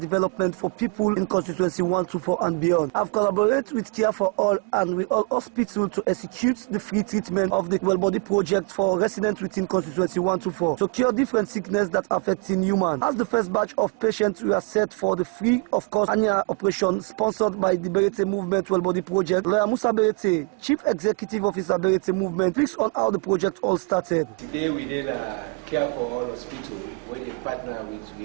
for people in Constituency 124 and beyond, I've collaborated with Care for All and with All Hospital to execute the free treatment of the Well-Body project for residents within Constituency 124 to cure different sicknesses that affecting humans. As the first batch of patients were set for the free of cost annual operation sponsored by the Beretay movement Well-Body project, Lawyer Musa Beretay, Chief Executive Officer Beretay movement, speaks on how the project all started. Today we did a Care for All hospital where they partner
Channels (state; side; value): quieter; left; 31.4 dB